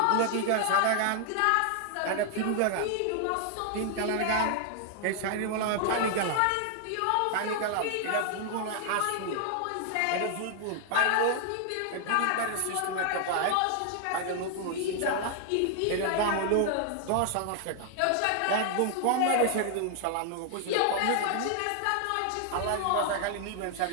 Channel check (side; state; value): both; different; correlation 0.00